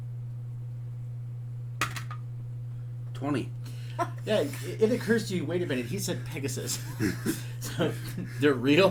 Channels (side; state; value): both; identical; correlation 1.00